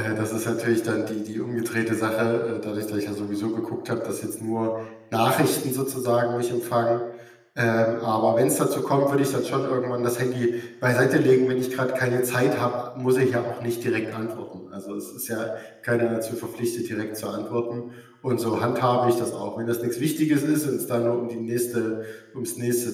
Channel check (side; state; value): both; identical; correlation 1.00